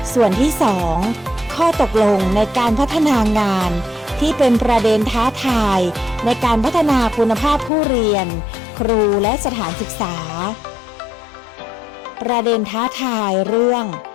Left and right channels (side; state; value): right; drops out; at 7.7 s